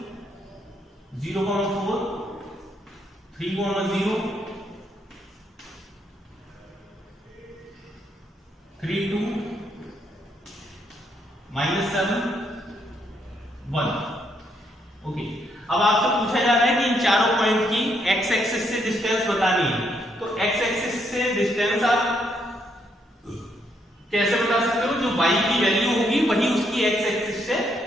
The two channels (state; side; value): normal; both; correlation 0.74